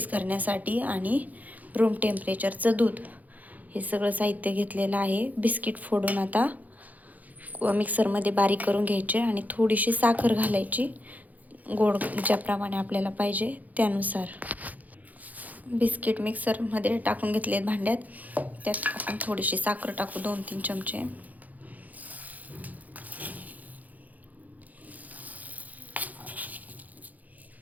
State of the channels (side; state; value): left; late; 0.079 ms